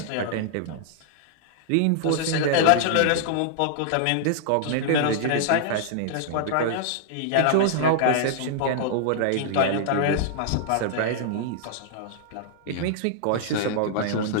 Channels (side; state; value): both; different; correlation -0.01